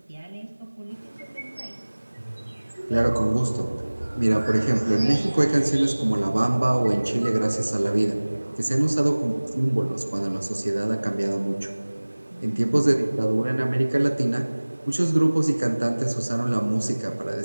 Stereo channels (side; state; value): both; inverted; correlation -1.00